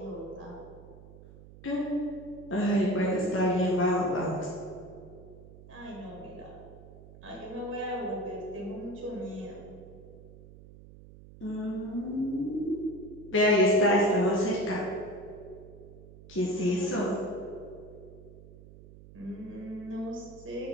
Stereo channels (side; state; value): right; noise; hum, 19 dB below the sound